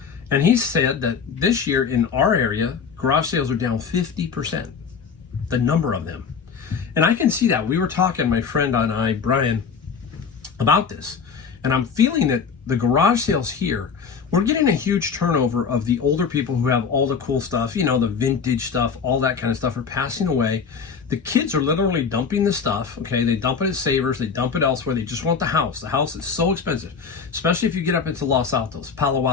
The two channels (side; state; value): right; quieter; 6.0 dB